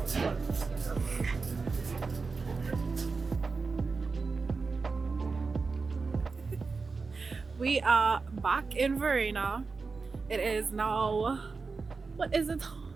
We are back in Varrena. It is now, what is the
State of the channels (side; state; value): left; quieter; 4.4 dB